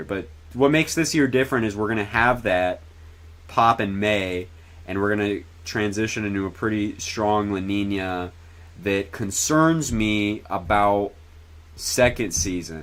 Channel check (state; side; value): identical; both; correlation 1.00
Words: But what makes this year different is we're going to have that pop in May, and we're going to transition into a pretty strong La Nina that concerns me about second